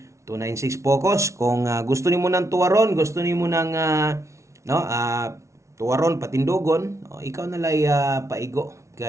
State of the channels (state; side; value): late; left; 0.14 ms